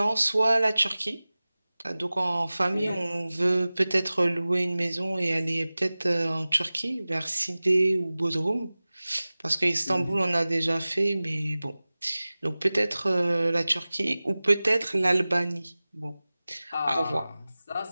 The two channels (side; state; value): both; inverted; correlation -0.98